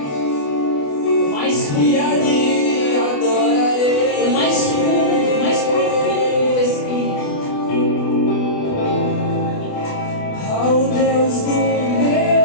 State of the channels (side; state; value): right; late; 28 ms